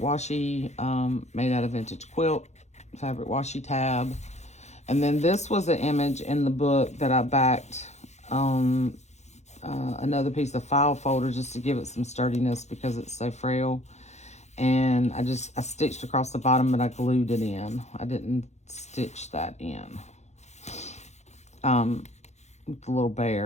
made out of vintage quilt, fabric washi tab. And then this was an image in the book that I backed on another piece of file folder just to give it some sturdiness because it's so frail. And I stitched across the bottom, but I glued it in. I didn't stitch that in. With the little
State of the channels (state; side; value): late; right; 0.33 ms